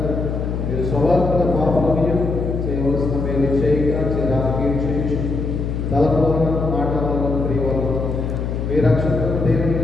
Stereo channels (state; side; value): noise; left; hum, 2 dB below the sound